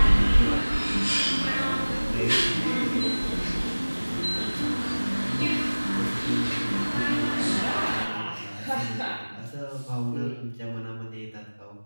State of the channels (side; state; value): both; inverted; correlation -1.00